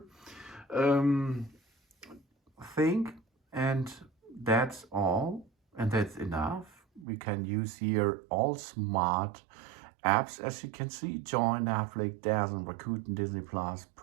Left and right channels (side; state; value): left; drops out; at 7.1 s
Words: thing, and that's all, and that's enough. We can use here all smart apps, as you can see: Join, Netflix, Dazzle, Rakuten, Disney Plus,